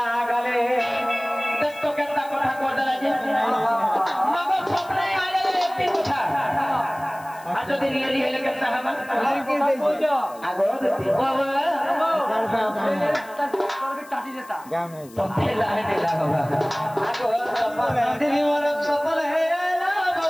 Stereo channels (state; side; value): noise; left; hiss, 23 dB below the sound